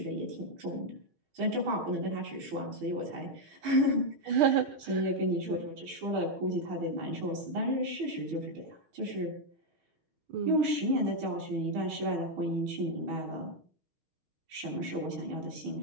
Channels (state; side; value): late; left; 6.4 ms